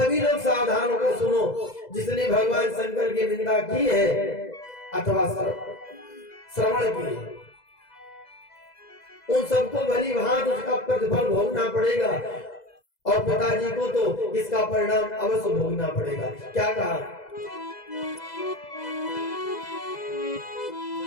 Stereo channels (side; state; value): right; late; 2.0 ms